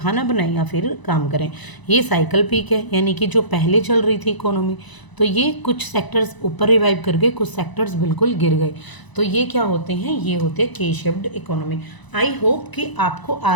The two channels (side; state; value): right; late; 1.0 ms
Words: बनाएं या फिर काम करें। ये साइकिल पीक है, यानी कि जो पहले चल रही थी इकोनॉमी, तो ये कुछ सेक्टर्स ऊपर रिवाइव कर गए, कुछ सेक्टर्स बिल्कुल गिर गए। तो ये क्या होते हैं, ये होते हैं के शेप्ड इकोनॉमी। आई होप कि आपको